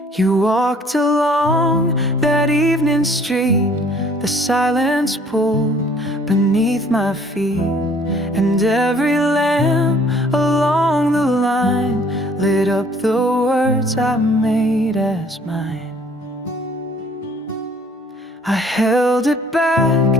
You walked along that evening street, the silence pulled beneath my feet. and every lamp along the line lit up the words I made as mine. I held it back,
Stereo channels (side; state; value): both; normal; correlation 0.57